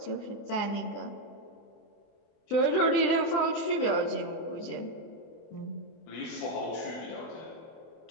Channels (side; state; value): right; late; 24 ms